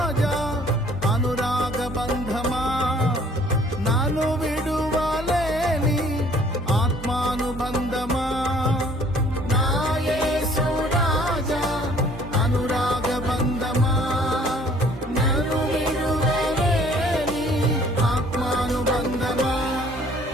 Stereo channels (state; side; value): normal; both; correlation 0.57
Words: అనురాగ బంధమా, నన్ను విడువలేని ఆత్మానుబంధమా. నా యేసు రాజా అనురాగ బంధమా, నన్ను విడువలేని ఆత్మానుబంధమా.